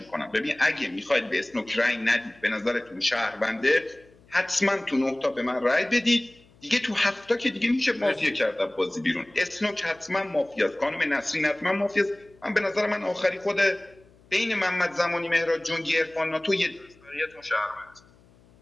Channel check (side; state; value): left; noise; hum, 28 dB below the sound